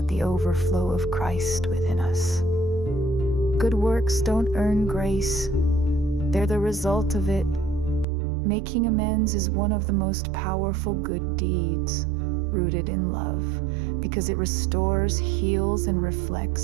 the overflow of Christ within us. Good works don't earn grace. They're the result of it. Making amends is one of the most powerful good deeds, rooted in love, because it restores, heals, and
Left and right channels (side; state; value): left; drops out; at 8.1 s